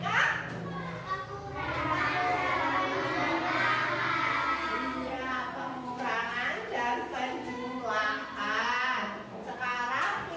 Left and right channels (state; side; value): identical; both; correlation 1.00